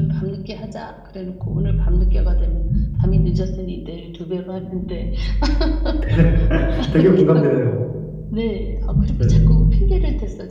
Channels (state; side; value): identical; both; correlation 1.00